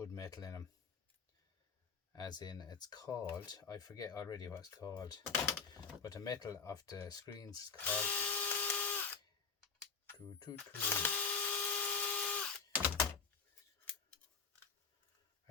metal in them. As in, it's called, I forget already what it's called, but the metal of the screens is called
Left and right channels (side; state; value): right; quieter; 5.3 dB